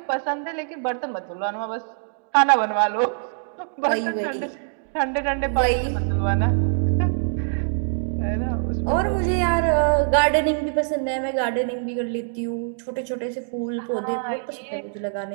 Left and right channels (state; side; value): silent; left; digital silence